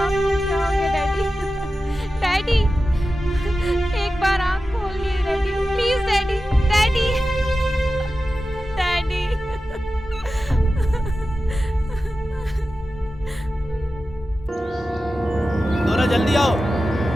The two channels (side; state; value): both; normal; correlation 0.93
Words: आपको क्या हो गया डैडी? डैडी, एक बार आँख खोलिए daddy, please daddy, daddy, daddy. दोरा जल्दी आओ।